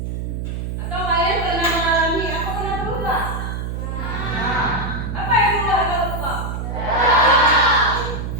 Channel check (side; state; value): right; noise; hum, 4 dB below the sound